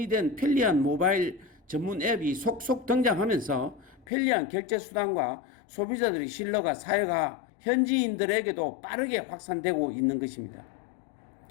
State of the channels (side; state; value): right; drops out; at 4.0 s